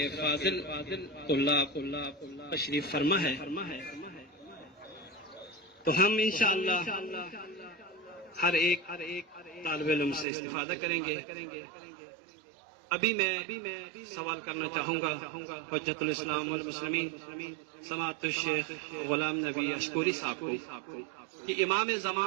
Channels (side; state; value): left; drops out; at 10.2 s